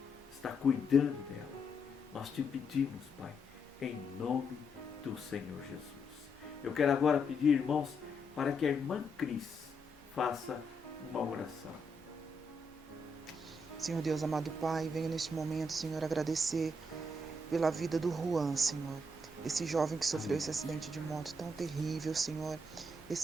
está cuidando dela. Nós te pedimos, Pai, em nome do Senhor Jesus. Eu quero agora pedir, irmãos, para que a irmã Cris faça uma oração. Senhor Deus, amado Pai, venho neste momento, Senhor, agradecer pela vida do Juan, Senhor. Esse jovem que sofreu esse acidente de moto tão terrível, Senhor.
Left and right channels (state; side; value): normal; both; correlation 0.79